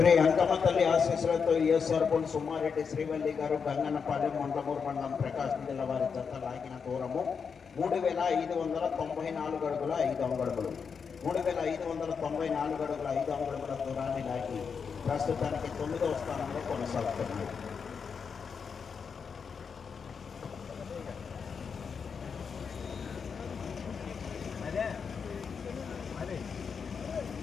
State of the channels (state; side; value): quieter; right; 6.1 dB